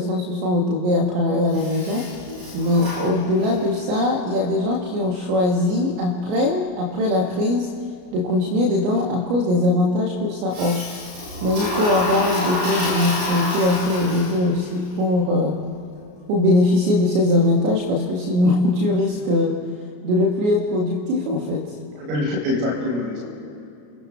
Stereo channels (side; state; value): left; late; 33 ms